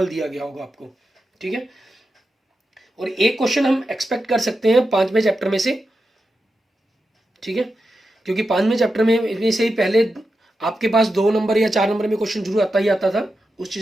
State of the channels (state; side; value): normal; both; correlation 0.89